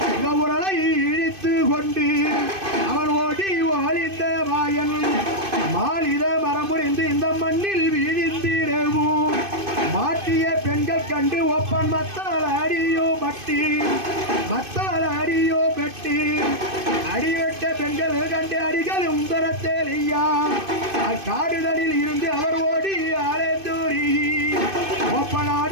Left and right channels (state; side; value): late; left; 2.5 ms